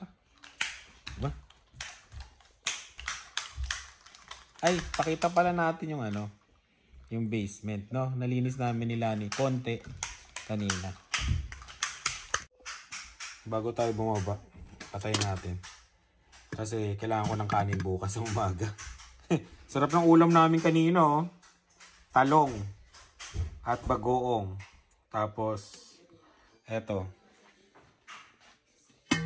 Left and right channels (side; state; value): both; identical; correlation 1.00